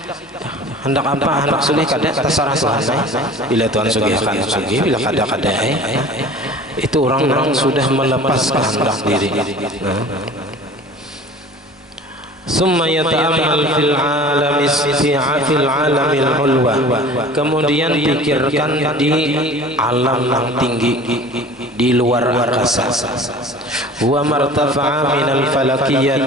Hendak apa, hendak sugih kada terserah Tuhan. Bila Tuhan sugihkan sugih, bila kada itu orang-orang sudah melepas kehendak diri. Summa yata'ammal fil alamil ulwa, kemudian pikirkan di alam yang tinggi, di luar angkasa. Wa martafa'a minal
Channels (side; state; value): both; normal; correlation 0.43